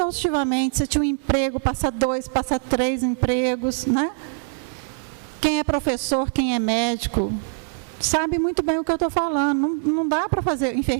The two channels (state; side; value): silent; left; digital silence